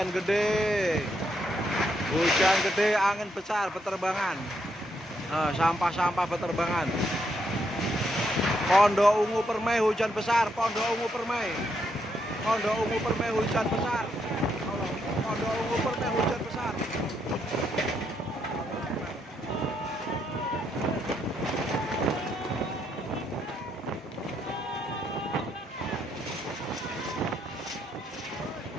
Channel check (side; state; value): both; normal; correlation 0.77